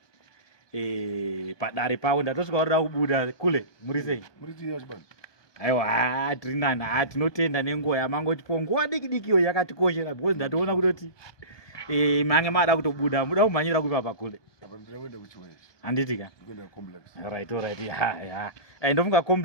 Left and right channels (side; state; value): right; late; 1.2 ms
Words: padare pavo ndatosvika kuda kubuda kule. Muri sei? Aiwa tiri nani tinotenda nenguva yamangotipo nguva diki diki iyo yakatikoshera because ndatoona kutoti mange mada kutobuda muda kumhanyira kupa kule. Handitika. Alright. Ya. Ndofunga